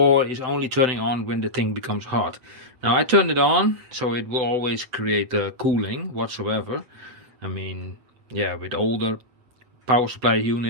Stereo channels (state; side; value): late; left; 7.9 ms